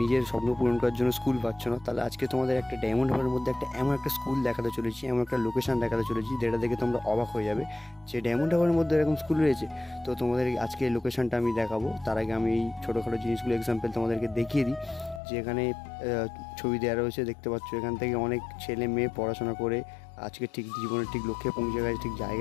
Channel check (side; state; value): right; drops out; at 15.2 s